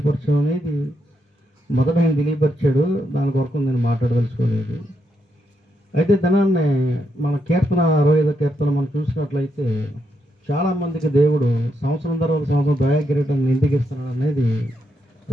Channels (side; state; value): both; normal; correlation 0.81